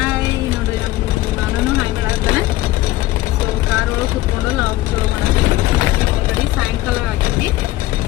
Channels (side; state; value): right; quieter; 16.9 dB